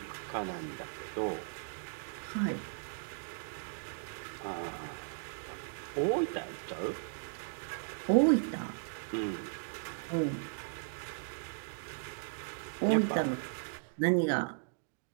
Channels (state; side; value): silent; left; digital silence